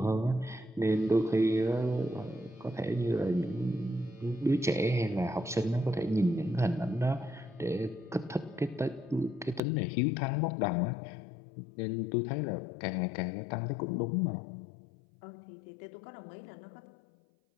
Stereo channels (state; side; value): drops out; right; at 9.6 s